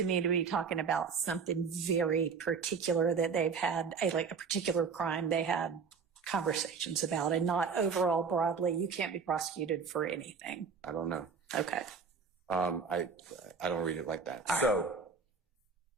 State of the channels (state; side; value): quieter; left; 5.6 dB